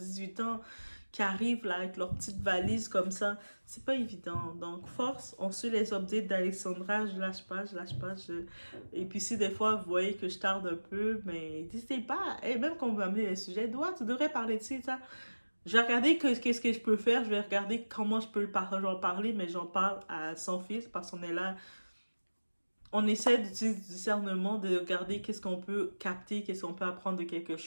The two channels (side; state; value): both; inverted; correlation -1.00